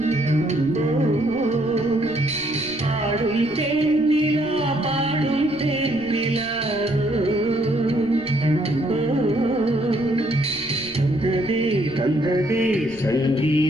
பாடும் தென்னிலா பாடும் தென்னிலா தந்ததே தந்ததே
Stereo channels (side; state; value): left; noise; rumble, 23 dB below the sound